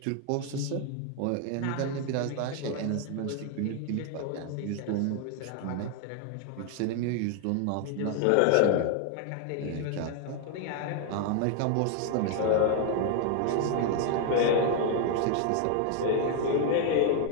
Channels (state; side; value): different; both; correlation 0.00